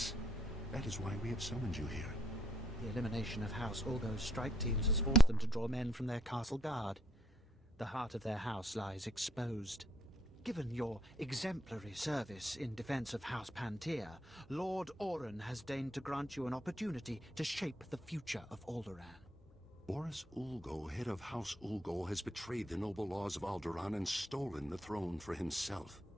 That is why we have summoned you here. The elimination of House Ulgo's strike teams has forced them to draw men from their castle guard. The heart of their house lies exposed. Given your exemplary service in defense of House Pantier, Lord Oren has deigned to grant you an opportunity to shape the future of Alderaan. Boris Ulgo, head of House Ulgo, has betrayed the noble laws of Alderaan and stolen the throne for himself.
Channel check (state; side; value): normal; both; correlation 0.72